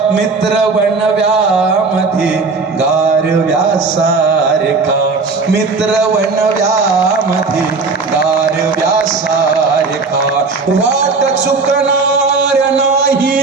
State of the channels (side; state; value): left; quieter; 4.2 dB